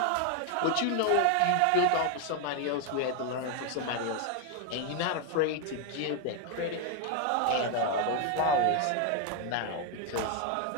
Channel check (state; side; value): different; both; correlation 0.01